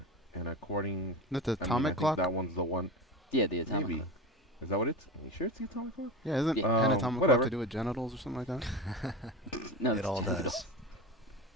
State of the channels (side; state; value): both; normal; correlation 0.27